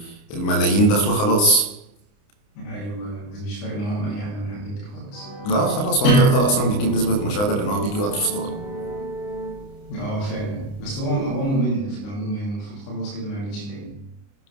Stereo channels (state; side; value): late; right; 29 ms